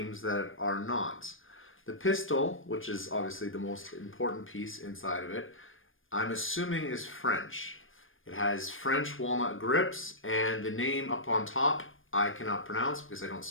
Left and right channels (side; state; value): right; late; 0.59 ms